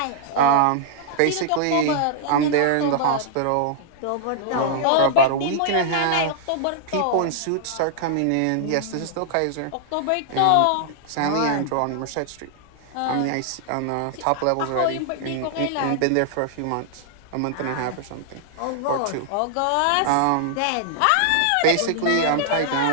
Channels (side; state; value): both; different; correlation -0.01